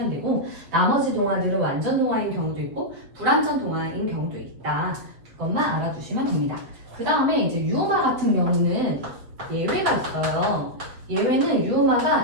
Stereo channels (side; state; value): left; late; 7.6 ms